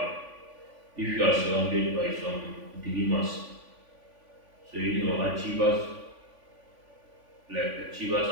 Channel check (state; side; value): late; left; 3.5 ms